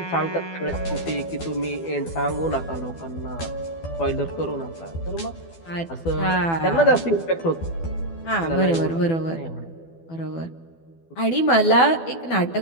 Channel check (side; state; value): right; late; 12 ms